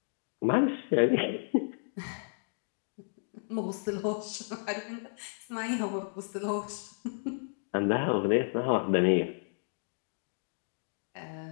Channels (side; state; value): right; silent; digital silence